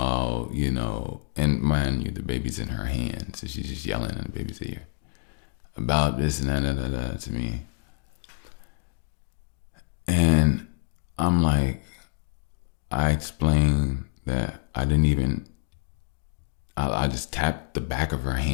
and mind you, the baby's in her hand, so she's just yelling in the baby's ear about this and that to me. And I'm like, I explained that I just tapped the back of her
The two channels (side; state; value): right; silent; digital silence